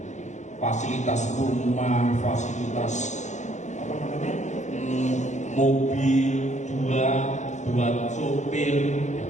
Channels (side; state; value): right; late; 0.34 ms